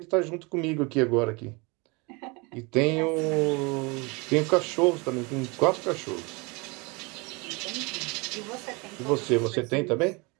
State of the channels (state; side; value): quieter; left; 27.9 dB